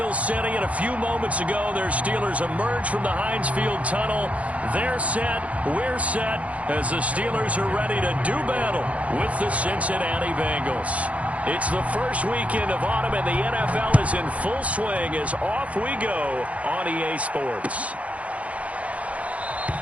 City, and a few moments ago, their Steelers emerged from the Heinz Field tunnel. They're set, we're set, as the Steelers are ready to do battle with the Cincinnati Bengals. It's the first weekend of autumn, and the NFL is in full swing as off we go on EA Sports.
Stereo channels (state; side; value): late; left; 0.066 ms